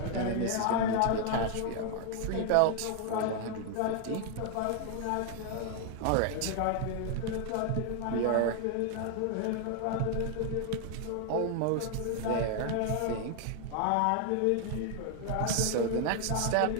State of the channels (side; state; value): both; different; correlation 0.00